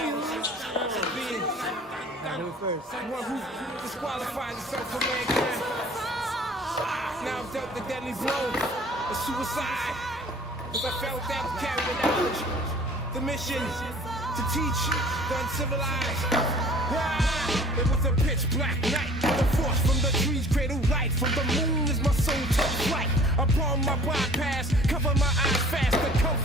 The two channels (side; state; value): both; normal; correlation 0.49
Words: Do it first. One who disqualifies himself from mankind. Now I'm dealt the deadly blow, a suicide. Cause I felt that to carry the knowledge, the mission to teach the uncivilized. It was a pitch black night. The force from the trees cradle light. From the moon is my soul took flight. Upon my bypass, cover my eyes fast. The